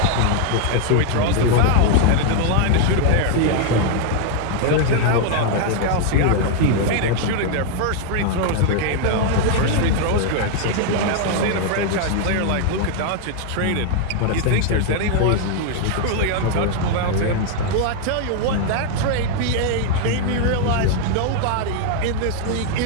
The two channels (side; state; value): both; different; correlation 0.00